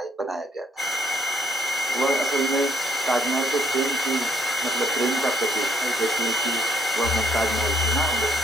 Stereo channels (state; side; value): normal; both; correlation 0.67